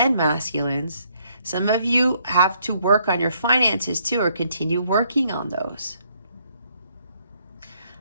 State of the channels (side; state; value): both; inverted; correlation -0.70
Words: masculines, some of you have to work on your finances too, or continue working on those.